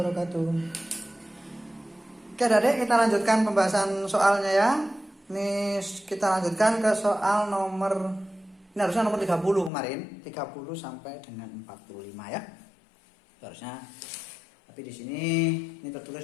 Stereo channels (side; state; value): right; drops out; at 9.7 s